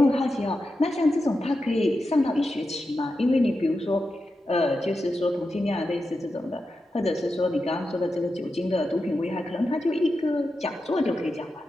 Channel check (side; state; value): both; normal; correlation 0.89